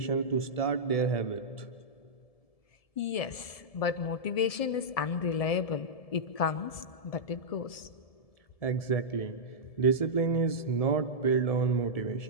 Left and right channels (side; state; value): right; late; 1.7 ms